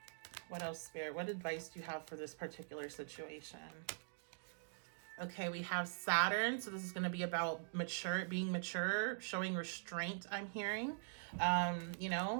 What else, Spirit? What advice do you have for this particular situation? Okay, we have Saturn. So this is going to be about being mature, showing restraint, I'm hearing. You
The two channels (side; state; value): left; silent; digital silence